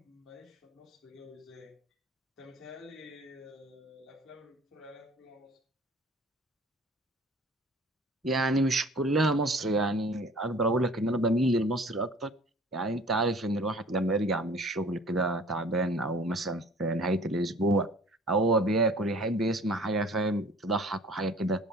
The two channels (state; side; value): normal; both; correlation 0.49